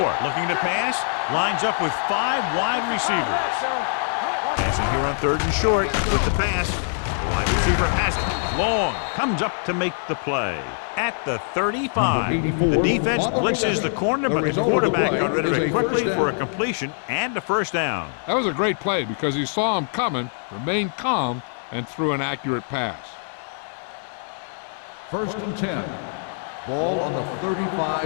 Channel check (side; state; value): right; silent; digital silence